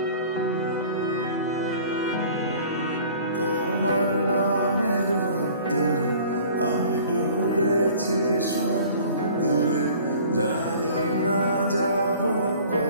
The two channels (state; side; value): inverted; both; correlation -0.48